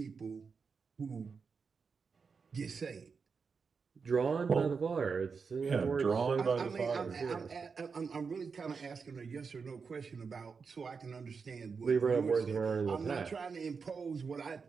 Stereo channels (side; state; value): left; quieter; 5.3 dB